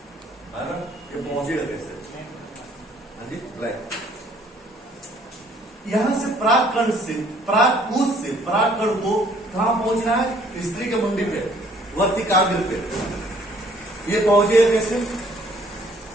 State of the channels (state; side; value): normal; both; correlation 0.60